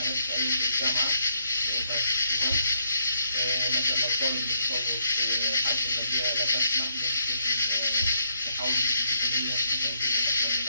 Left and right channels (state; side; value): inverted; both; correlation -0.72